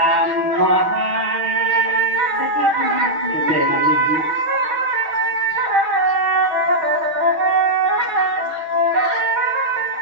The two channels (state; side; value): late; left; 6.5 ms